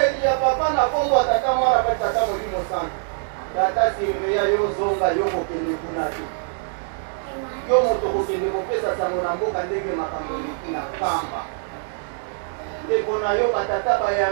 ya papa na kombo ya tata mwana pa tata Molimo Santo tata sirveya yo zonga yo kokende kuna te yo moto kokende kopesa sango na mboka ndenge makambo eleki na Nkamba ndeko na yo batata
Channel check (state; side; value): silent; left; digital silence